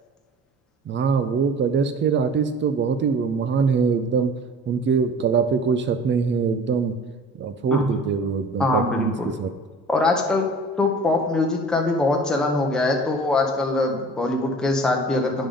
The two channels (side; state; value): both; normal; correlation 0.44